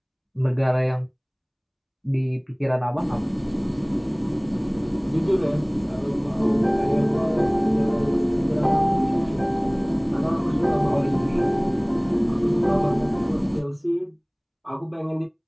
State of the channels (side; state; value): both; identical; correlation 1.00